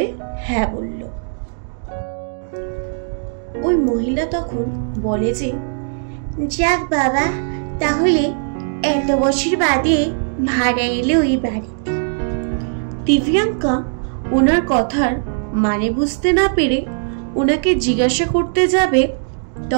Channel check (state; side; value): silent; left; digital silence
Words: হ্যাঁ বলল। ওই মহিলা তখন বলে যে, যাক বাবা, তাহলে এত বছর বাদে ভাড়া এলে ওই বাড়িতে। দিব্যাঙ্কা ওনার কথার মানে বুঝতে না পেরে ওনাকে জিজ্ঞাসা করতে যাবে,